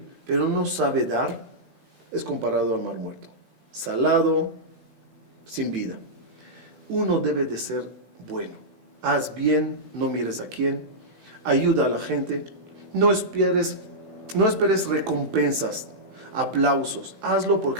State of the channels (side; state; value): left; late; 16 ms